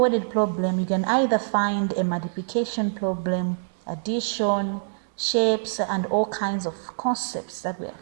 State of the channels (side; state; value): left; silent; digital silence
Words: problem, you can either find a multiplication problem, addition, shapes, and all kinds of concepts that we